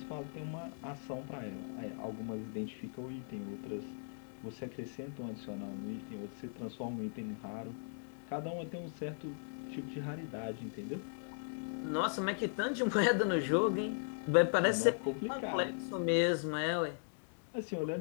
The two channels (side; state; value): right; silent; digital silence